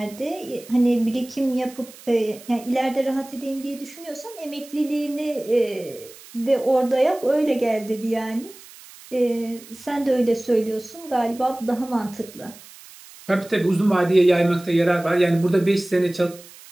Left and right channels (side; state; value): right; noise; hiss, 20 dB below the sound